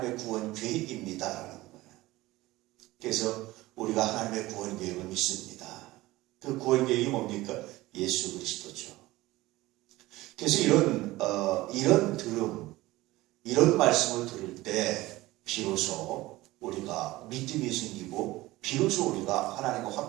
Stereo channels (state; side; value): quieter; left; 18.5 dB